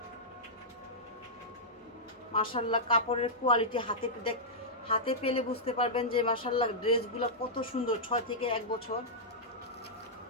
মাশাআল্লাহ, কাপড়ের কোয়ালিটি হাতে পেলে বুঝতে পারবেন যে মাশাআল্লাহ ড্রেসগুলো কত সুন্দর। 6 থেকে 1 বছর।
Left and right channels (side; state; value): both; normal; correlation -0.11